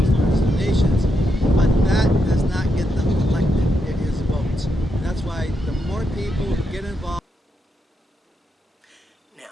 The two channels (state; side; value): normal; both; correlation 0.83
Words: large donations, but that does not get them elected. It is votes. And that's why the more people who get involved.